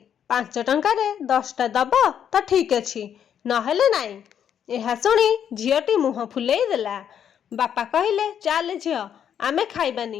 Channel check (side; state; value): right; quieter; 8.9 dB